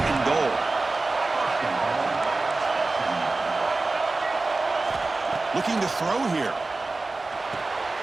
goal. Looking to throw here.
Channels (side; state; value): left; quieter; 3.4 dB